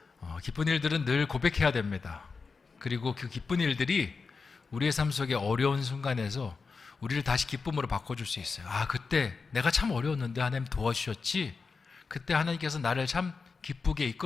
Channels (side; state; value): right; quieter; 4.7 dB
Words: 기쁜 일들은 늘 고백해야 됩니다. 그리고 그 기쁜 일들이 우리의 삶 속에 어려운 순간에서 우리를 다시 기쁨으로 바꿔줄 수 있어요. 아, 그때 내가 참 어려웠는데 하나님 도와주셨지. 그때 하나님께서 나를 참 기쁘게